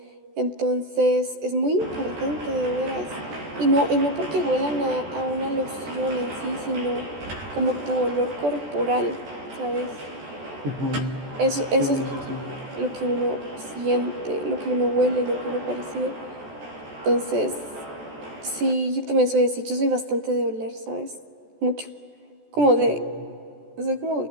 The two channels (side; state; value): left; late; 14 ms